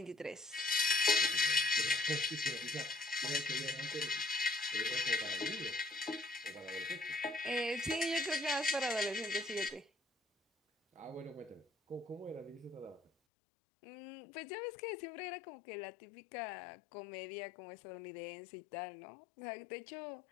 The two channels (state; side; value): drops out; right; at 13.1 s